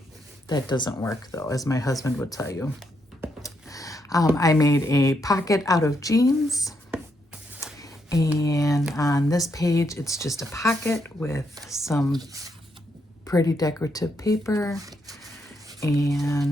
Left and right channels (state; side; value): normal; both; correlation 0.78